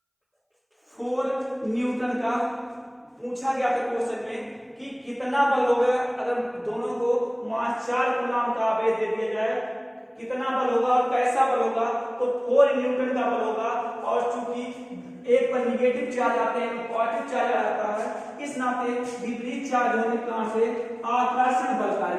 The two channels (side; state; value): both; identical; correlation 1.00